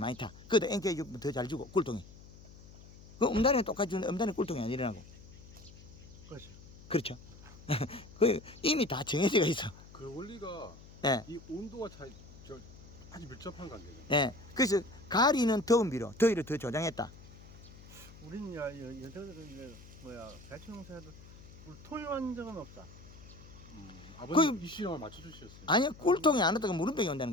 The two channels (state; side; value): noise; left; hum, 19 dB below the sound